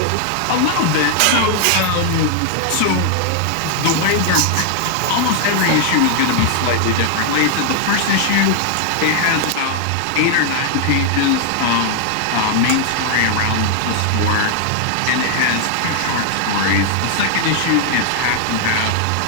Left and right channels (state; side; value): different; both; correlation 0.00